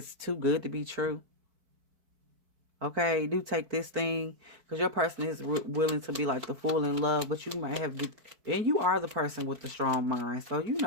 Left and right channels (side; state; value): left; late; 4.6 ms